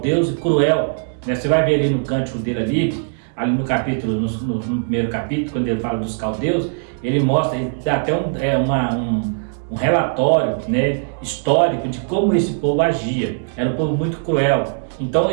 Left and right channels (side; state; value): left; silent; digital silence